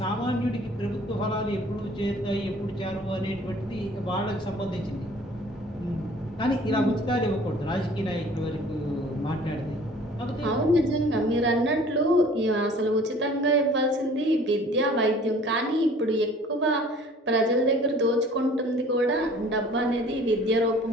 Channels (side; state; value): both; normal; correlation 0.51